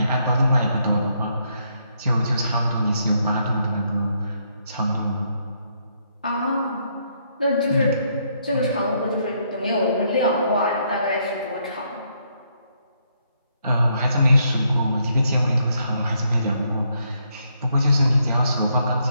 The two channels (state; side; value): inverted; both; correlation -0.74